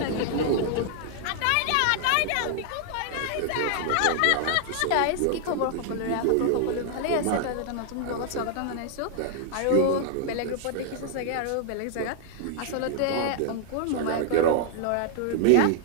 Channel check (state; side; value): different; both; correlation -0.01